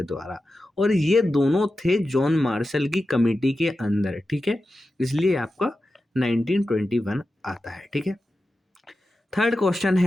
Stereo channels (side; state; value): both; normal; correlation 0.92